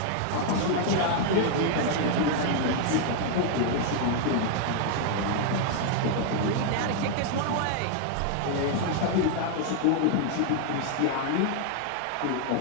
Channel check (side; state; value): both; different; correlation 0.00